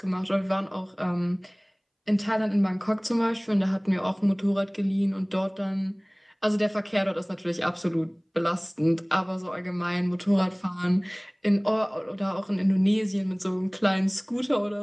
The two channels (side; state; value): both; identical; correlation 1.00